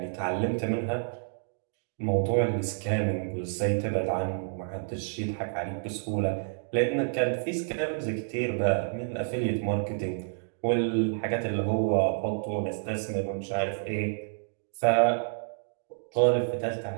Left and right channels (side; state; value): left; silent; digital silence